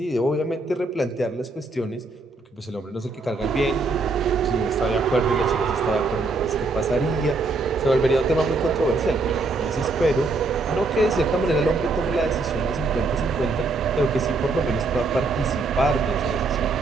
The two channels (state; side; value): quieter; left; 3.5 dB